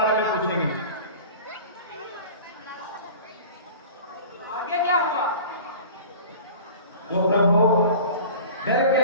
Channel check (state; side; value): inverted; both; correlation -0.40